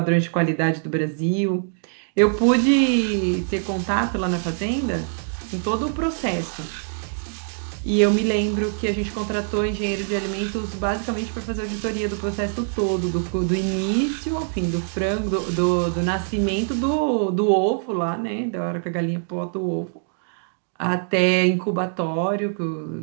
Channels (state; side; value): silent; left; digital silence